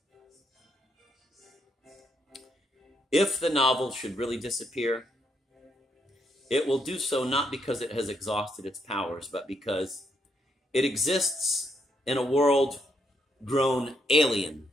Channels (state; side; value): normal; both; correlation 0.76